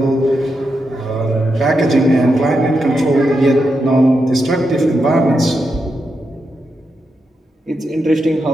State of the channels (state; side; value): normal; both; correlation 0.85